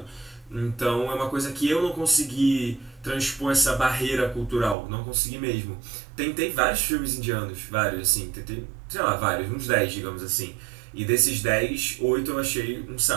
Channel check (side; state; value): left; drops out; at 4.8 s